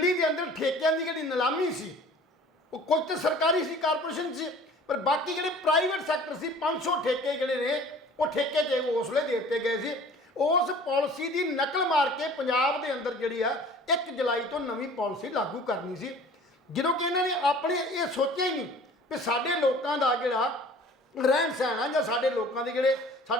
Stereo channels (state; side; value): normal; both; correlation 0.47